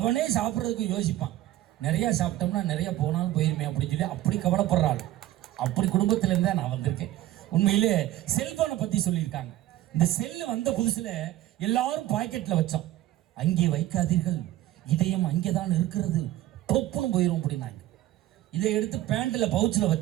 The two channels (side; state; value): left; quieter; 14.4 dB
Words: சாப்பிட்றதுக்கு யோசிப்பான், நிறைய சாப்பிட்டோம்னா நிறைய போனாலும் போயிருமே அப்படின்னு சொல்லி அப்படி கவலைப்படுறாள். அப்படி குடும்பத்திலேருந்து நான் வந்திருக்கேன். உண்மையிலே செல்போனை பத்தி சொல்லியிருக்காங்க. இந்த செல்லு வந்த புதுசுல எல்லாரும் பாக்கெட்ல வச்சோம். அங்கே வைக்காதீர்கள், இதயம் அங்கேதான் இருக்கிறது, தொப்புன்னு போயிரும் அப்படின்னாங்க. இதை எடுத்து பேண்ட்ல பவுச்சில்